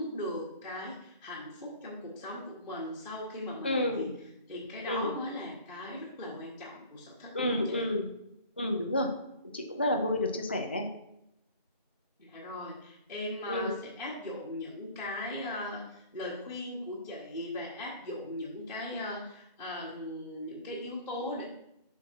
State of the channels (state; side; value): inverted; both; correlation -0.45